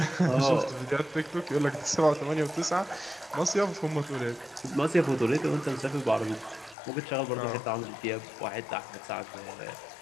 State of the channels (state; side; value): drops out; right; at 6.8 s